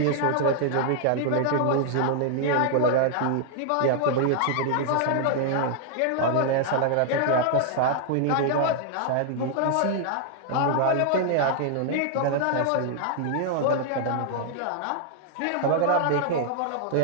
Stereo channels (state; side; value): different; both; correlation 0.00